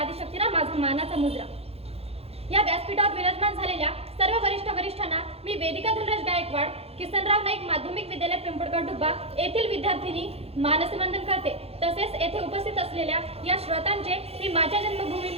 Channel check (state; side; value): late; left; 0.29 ms